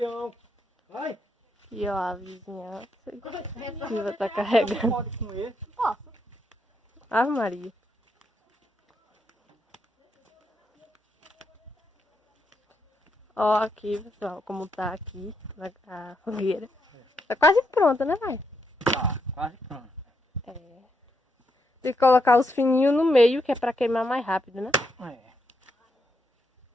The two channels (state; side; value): normal; both; correlation 0.79